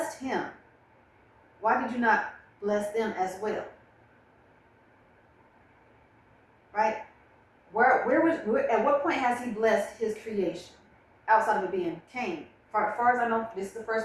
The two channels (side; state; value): both; identical; correlation 1.00